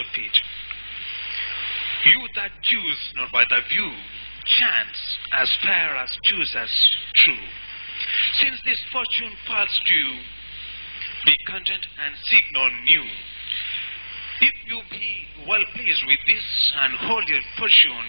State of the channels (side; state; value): both; inverted; correlation -1.00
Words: You that choose not by the view, chance as fair as choose as true. Since this fortune falls to you, be content and seek no new. If you be well pleased with this, and hold your fortune